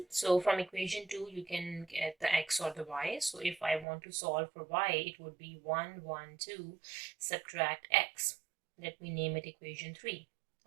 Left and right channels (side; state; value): left; drops out; at 3.9 s